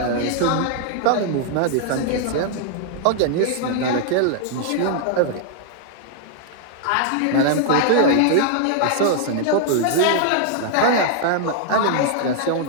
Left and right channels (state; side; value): different; both; correlation -0.01